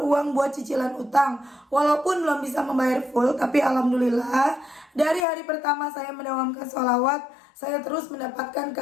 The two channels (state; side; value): drops out; right; at 5.2 s